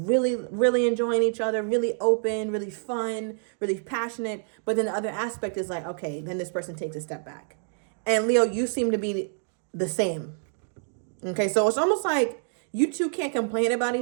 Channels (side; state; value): left; silent; 60 dB below the other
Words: really enjoying each other, really open, really fun, really passionate. But then the other aspect is like, okay, then this person takes a step back. And Leo, you seem to be the same. Okay, so it's almost like you two can't complain about